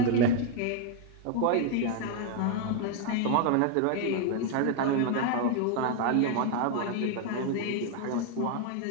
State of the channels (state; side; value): different; both; correlation 0.01